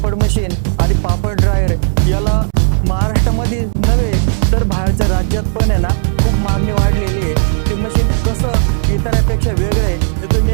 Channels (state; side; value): silent; left; digital silence